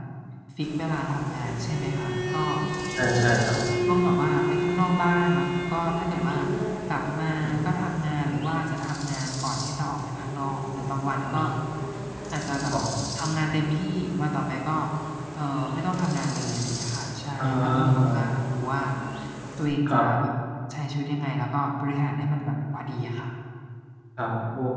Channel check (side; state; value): both; identical; correlation 1.00